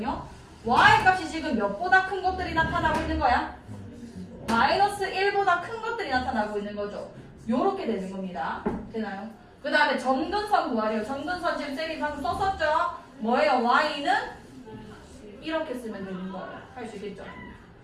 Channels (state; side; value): identical; both; correlation 1.00